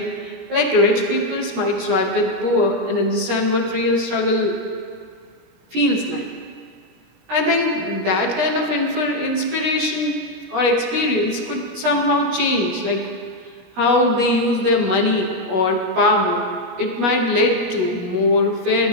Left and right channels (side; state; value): left; late; 17 ms